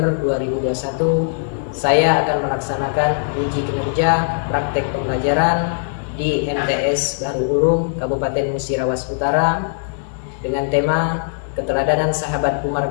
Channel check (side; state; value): right; silent; 66 dB below the other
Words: 2021, saya akan melaksanakan uji kinerja praktek pembelajaran di MTS Bahru Ulum Kabupaten Musirawas Utara dengan tema keteladanan sahabat Umar